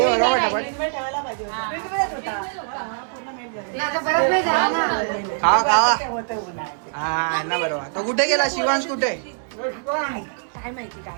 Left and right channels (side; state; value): left; silent; 63 dB below the other